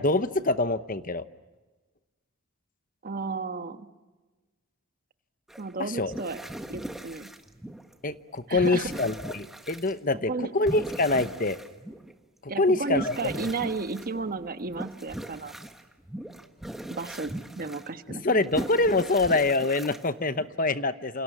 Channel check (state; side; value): normal; both; correlation 0.10